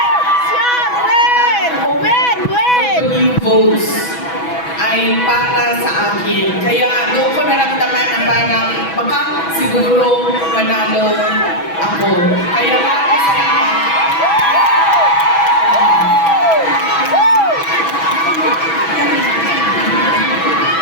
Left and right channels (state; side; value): late; right; 6.1 ms